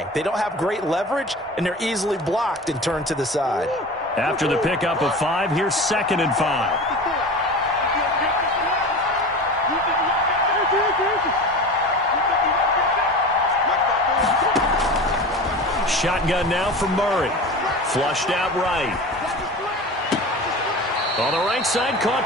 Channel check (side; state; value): both; normal; correlation 0.32